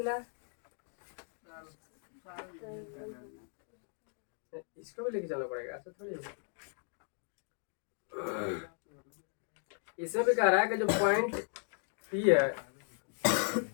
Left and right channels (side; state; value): right; silent; 54 dB below the other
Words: इसको भी लेके चलना पड़ेगा, ऐसा थोड़ी है। इसमें भी कह रहा है कि जो पॉइंट P है